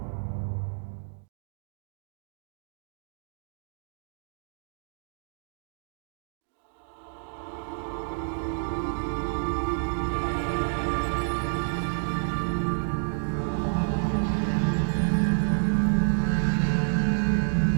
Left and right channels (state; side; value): silent; left; digital silence